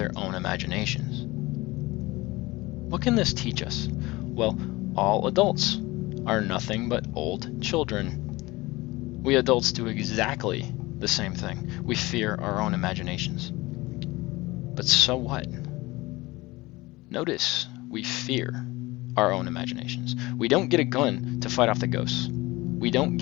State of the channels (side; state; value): right; quieter; 21.0 dB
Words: own imaginations. What can this teach us? Well, all adults are nothing but old children. We adults do exactly the same thing. We fear our own imaginations. But so what? Notice we fear our own imaginations. We don't get a gun to fight off the ghosts. We don't